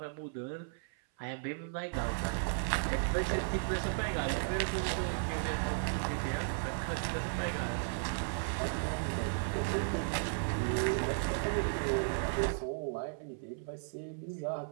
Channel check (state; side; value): silent; left; 54 dB below the other